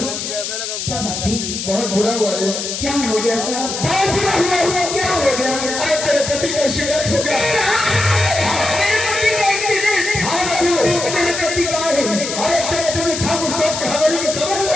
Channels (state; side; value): noise; left; hiss, 5 dB below the sound